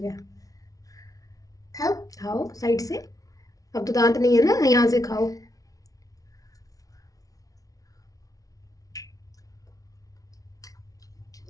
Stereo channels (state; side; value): late; right; 0.18 ms